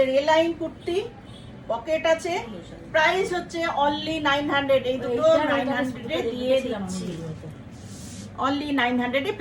এ লাইন কুর্তি, পকেট আছে, প্রাইস হচ্ছে অনলি 900। এই দুটো 900-এ দিয়ে দিচ্ছি, অনলি 900-এ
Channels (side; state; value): both; identical; correlation 1.00